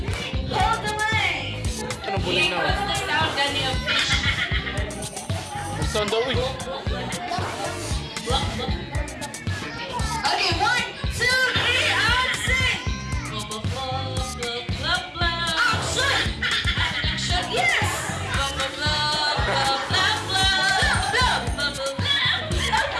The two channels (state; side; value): identical; both; correlation 1.00